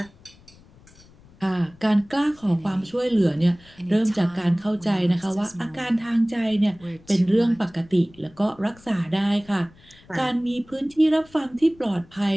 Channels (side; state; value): left; noise; rumble, 26 dB below the sound